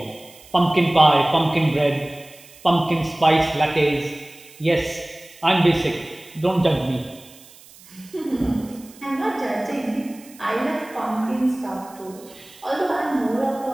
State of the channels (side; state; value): right; noise; hiss, 23 dB below the sound